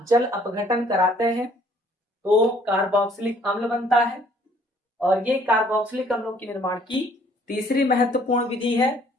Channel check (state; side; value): normal; both; correlation 0.60